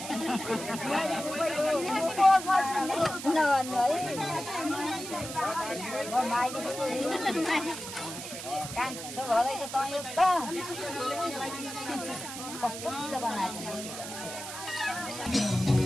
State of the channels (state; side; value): noise; right; hiss, 9 dB below the sound